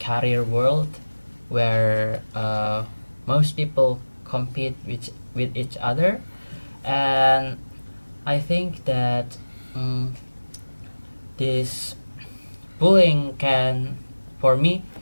career world, where most people compete with each other. And I think that this bullying can, for me,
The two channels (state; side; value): inverted; both; correlation -1.00